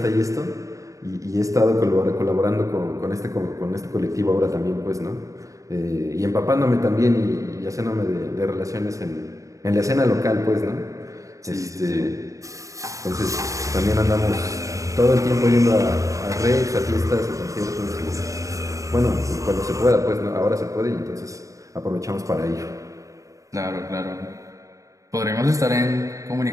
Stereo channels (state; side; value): late; left; 0.16 ms